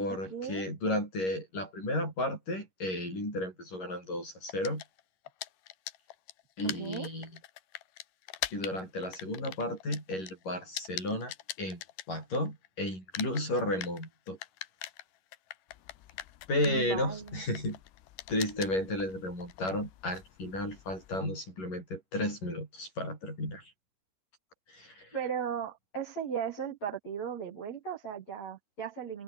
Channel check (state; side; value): late; right; 11 ms